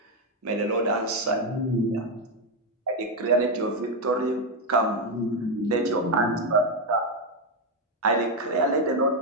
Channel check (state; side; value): normal; both; correlation 0.05